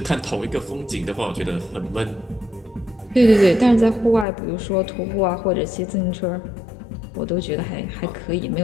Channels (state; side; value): drops out; right; at 4.2 s